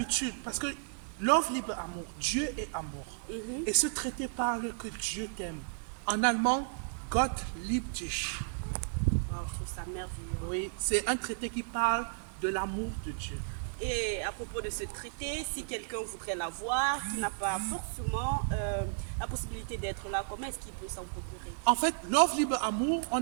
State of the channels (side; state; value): left; silent; digital silence